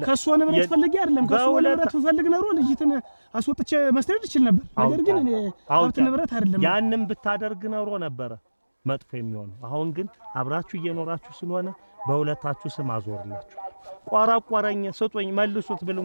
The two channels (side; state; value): both; inverted; correlation -1.00